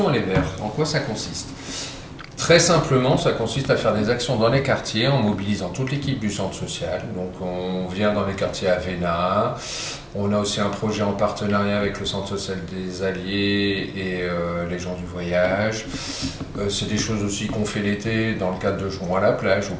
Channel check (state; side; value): identical; both; correlation 1.00